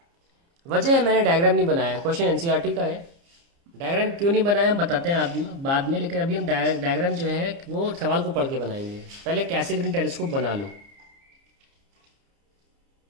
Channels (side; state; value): left; late; 30 ms